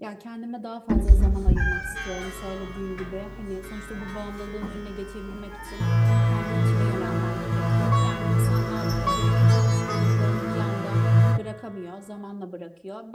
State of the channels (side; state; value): both; identical; correlation 1.00